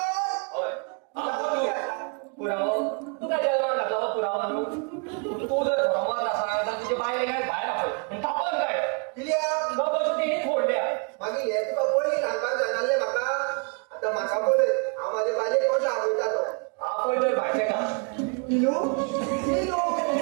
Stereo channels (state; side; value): quieter; left; 36.7 dB